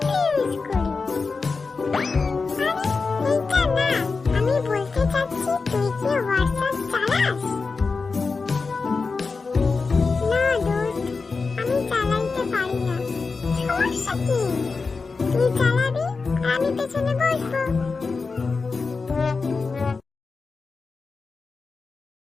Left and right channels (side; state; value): right; quieter; 4.4 dB